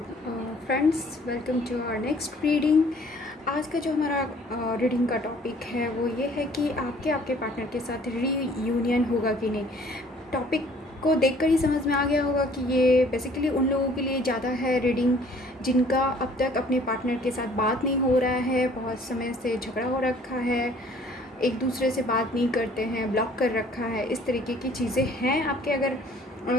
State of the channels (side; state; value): both; normal; correlation 0.56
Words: friends, welcome to our next reading. आज का जो हमारा रीडिंग का टॉपिक है वो ये है कि आपके पार्टनर के साथ रीयूनियन होगा कि नहीं। टॉपिक को देखकर ही समझ में आ गया होगा कि ये बेसिकली उन लोगों के लिए ज़्यादा है रीडिंग जिनका अब तक अपने पार्टनर के साथ बात नहीं हो रहा है, बहुत समय से झगड़ा हो रखा है, एक दूसरे से बात नहीं करते हैं, ब्लॉक कर रखा है, इस तरीके की चीज़ें हैं आपके अगर